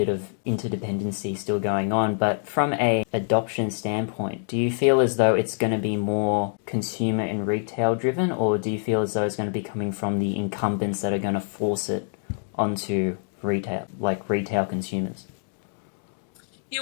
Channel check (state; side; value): silent; right; 61 dB below the other